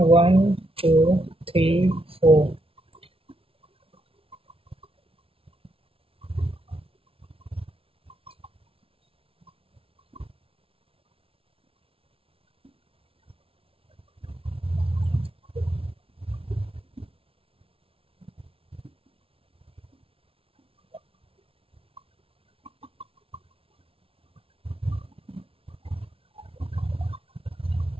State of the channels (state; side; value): late; left; 0.26 ms